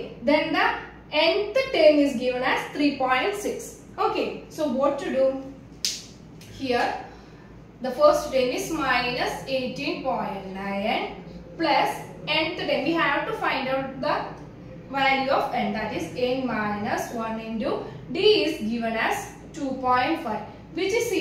then the nth term is given as 3.6. Okay, so what to do? Here, the first term is minus 18.9 plus nth term. We have to find out the value of n, that is n minus 1 into D is given as 2.5, which is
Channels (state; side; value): identical; both; correlation 1.00